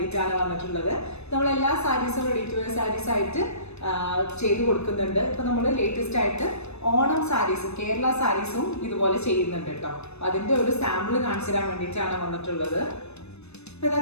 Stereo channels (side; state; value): right; late; 0.81 ms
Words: വന്നിട്ടുള്ളത്. നമ്മൾ എല്ലാ സാരീസും റെഡി ടു വെയർ സാരീസ് ആയിട്ട് ചെയ്തു കൊടുക്കുന്നുണ്ട്. ഇപ്പൊ നമ്മൾ ലേറ്റസ്റ്റ് ആയിട്ട് ഓണം സാരീസും കേരള സാരീസും ഇതുപോലെ ചെയ്യുന്നുണ്ട് കേട്ടോ. അതിന്റെ ഒരു സാമ്പിൾ കാണിച്ചു തരാൻ വേണ്ടിയിട്ടാണ് വന്നിട്ടുള്ളത്. ഇപ്പൊ